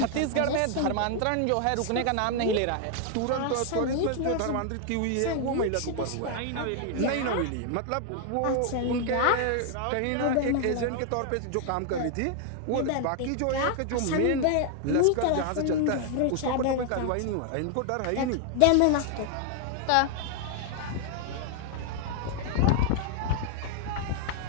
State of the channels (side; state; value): both; different; correlation 0.00